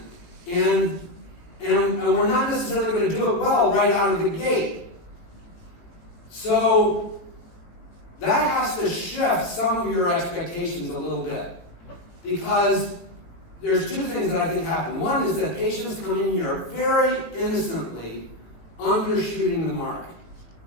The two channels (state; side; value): late; right; 17 ms